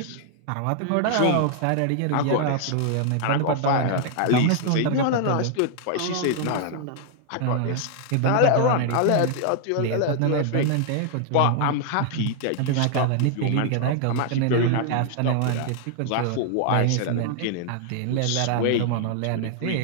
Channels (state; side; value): different; both; correlation 0.00